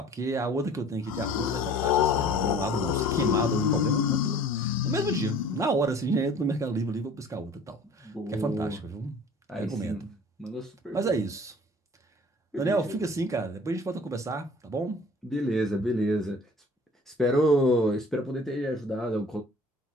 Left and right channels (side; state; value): both; normal; correlation 0.48